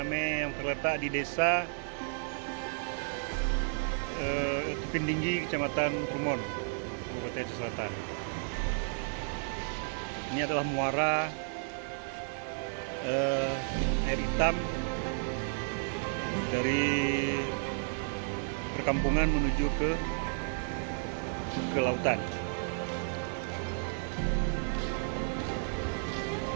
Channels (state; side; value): silent; left; 56 dB below the other